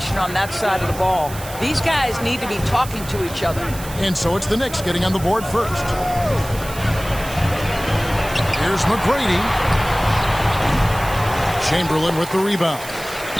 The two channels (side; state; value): right; noise; hiss, 14 dB below the sound